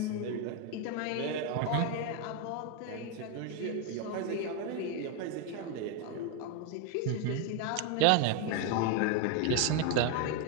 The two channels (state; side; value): different; both; correlation 0.01